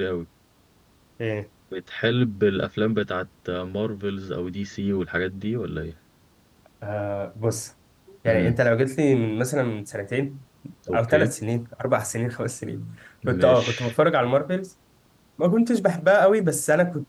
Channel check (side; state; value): both; identical; correlation 1.00